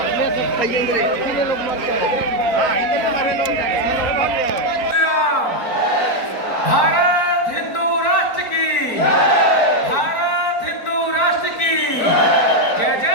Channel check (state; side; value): late; right; 4.4 ms